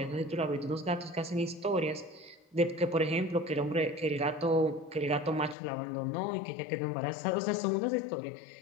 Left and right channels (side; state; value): right; drops out; at 5.6 s